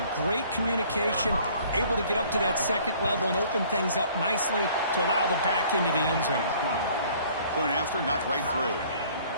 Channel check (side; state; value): both; inverted; correlation -0.55